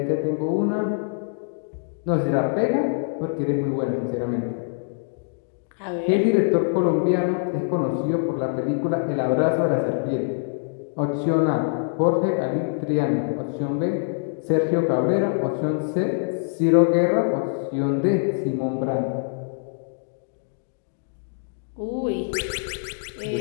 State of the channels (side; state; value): right; silent; digital silence